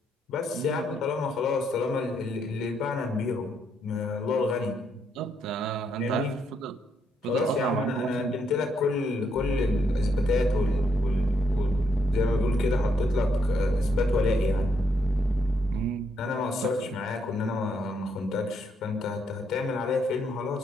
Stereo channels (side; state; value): both; normal; correlation 0.76